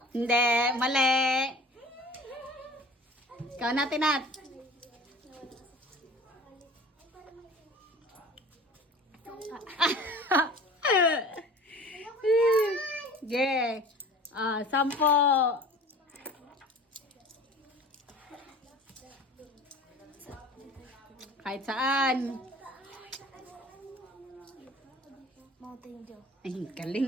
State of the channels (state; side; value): normal; both; correlation 0.43